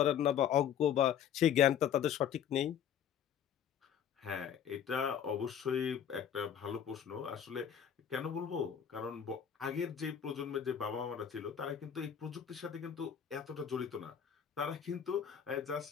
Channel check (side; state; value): right; quieter; 8.8 dB